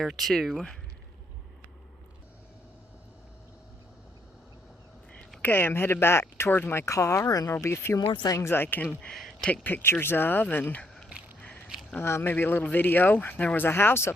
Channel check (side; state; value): both; normal; correlation 0.72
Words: too. Okay, I'm headed back towards my car, and there'll be a few more things I can take pictures of, and maybe a little video. There was a house